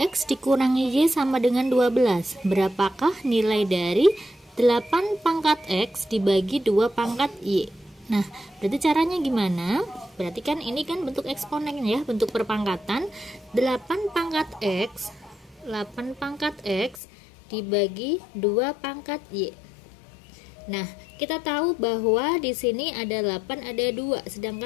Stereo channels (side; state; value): right; drops out; at 17.0 s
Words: dikurangi y sama dengan 12, berapakah nilai dari 8 pangkat x dibagi 2 pangkat y? Nah, berarti caranya gimana? Berarti kan ini kan bentuk eksponen ya, bentuk perpangkatan. 8 pangkat x dibagi 2 pangkat y. Nah, kita tahu bahwa di sini ada 8, ada 2,